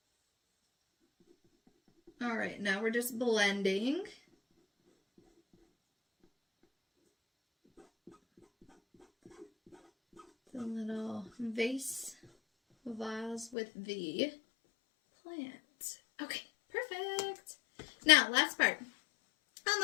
All right, now we're just blending. The little vase with the plant. Okay, perfect. Now, last part. On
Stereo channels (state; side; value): drops out; right; at 13.6 s